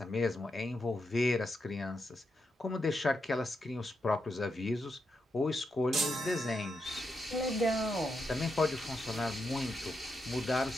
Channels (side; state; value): both; normal; correlation 0.84